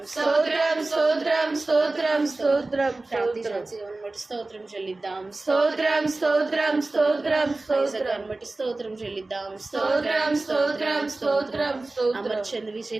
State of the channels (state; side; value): quieter; left; 3.1 dB